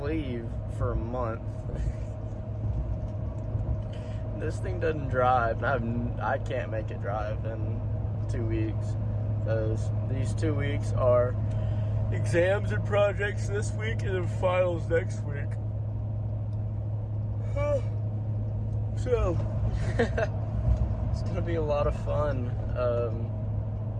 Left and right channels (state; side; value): identical; both; correlation 1.00